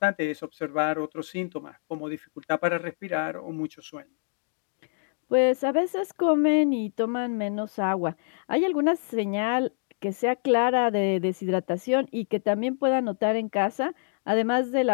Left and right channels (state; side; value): silent; right; digital silence